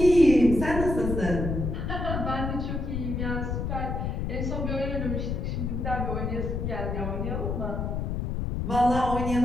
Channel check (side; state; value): left; noise; rumble, 2 dB below the sound